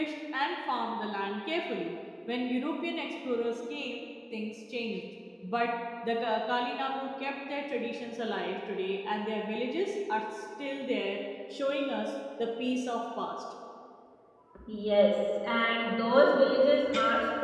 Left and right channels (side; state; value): both; identical; correlation 1.00